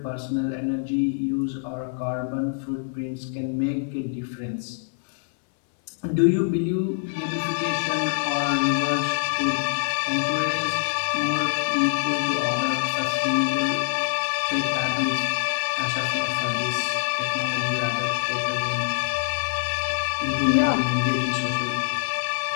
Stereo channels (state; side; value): silent; right; 62 dB below the other